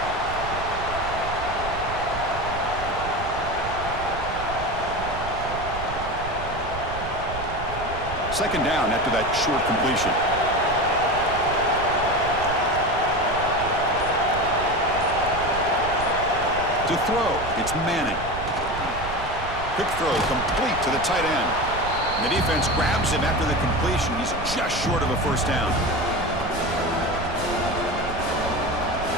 Second down after that short completion. To throw, it's Manning. Quick throw, complete to the tight end. And the defense grabs him after the completion. He's just short of a 1st down.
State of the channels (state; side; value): noise; right; rumble, 10 dB below the sound